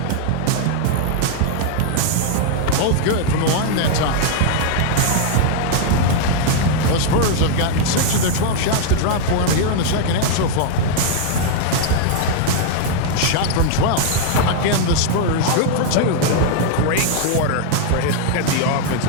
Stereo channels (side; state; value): both; different; correlation 0.00